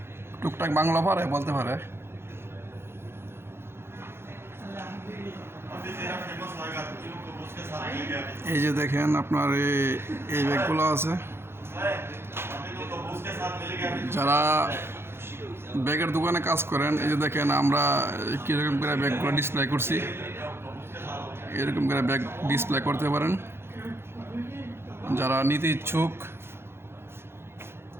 টুকটাক বাংলা পারে, বলতে পারে। এই যে দেখেন আপনার এই ব্যাগগুলো আছে। যারা ব্যাগের দোকানে কাজ করেন, এই যে দেখেন আমরা কীরকম করে ব্যাগগুলো ডিসপ্লে করছি, এরকম করে ব্যাগ ডিসপ্লে করতে পারেন। যারা নিতে ইচ্ছুক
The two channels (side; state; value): left; late; 0.12 ms